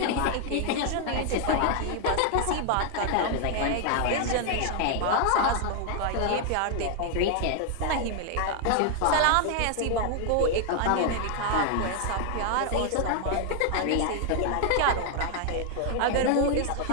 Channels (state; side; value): different; both; correlation 0.00